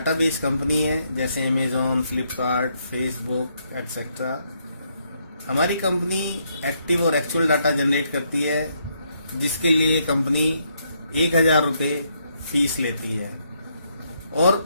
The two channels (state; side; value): inverted; both; correlation -0.75